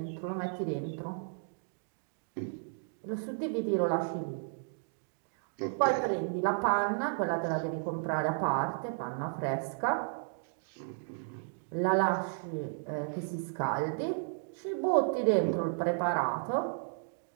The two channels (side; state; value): left; silent; digital silence